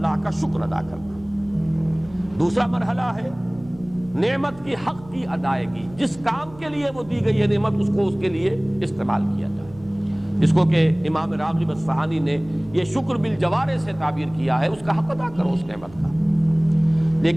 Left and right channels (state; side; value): noise; right; hum, 21 dB below the sound